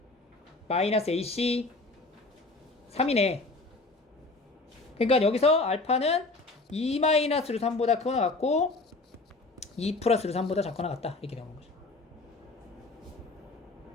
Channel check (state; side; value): quieter; right; 3.3 dB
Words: 마이너스 ac 3이네. 그러니까 여기서 알파는 2 마이너스 루트 3보다 크거나 같고 2 플러스 루트 3보다 작거나 같다. 이렇게 되는 거죠.